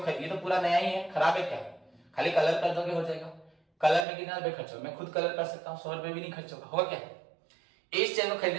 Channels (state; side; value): drops out; left; at 4.0 s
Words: ये तो पूरा नया ही है, खराब है क्या, खाली कलर कर दोगे हो जाएगा। कलर में कितना रुपए खर्च होगा, मैं खुद कलर कर सकता हूँ, 100 रुपए भी नहीं खर्च होगा क्या। इस चेयर को